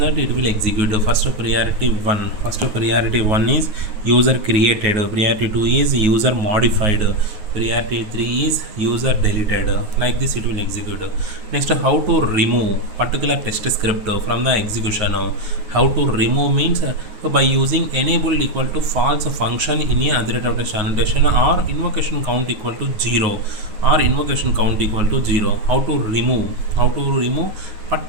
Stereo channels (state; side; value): late; left; 9.4 ms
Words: it will execute. First priority 1 is user created, priority 2 is user modified, priority 3 is user deleted. Like this it will execute. Next, how to remove particular test script from the execution. How to remove means by using enabled equal to false function in a other rate of test annotation, or invocation count equal to 0, or invocation count equal to 0. How to remove